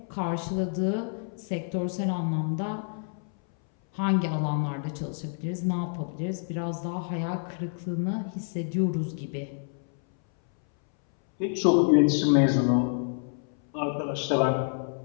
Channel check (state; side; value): silent; right; 59 dB below the other